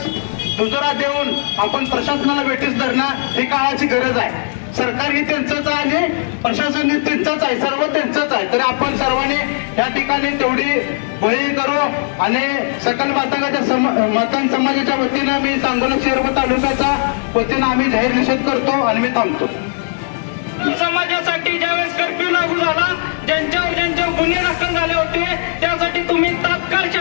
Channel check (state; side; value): silent; right; digital silence